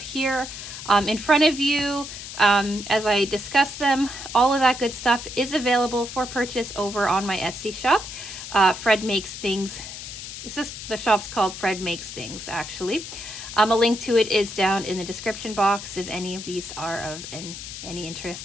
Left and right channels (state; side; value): noise; left; hiss, 10 dB below the sound